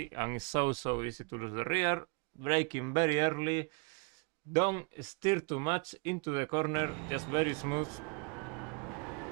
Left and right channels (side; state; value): left; quieter; 33.2 dB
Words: and it's so easy to lose the rear. Braking very early. Don't steer too much into the corner, just very smooth.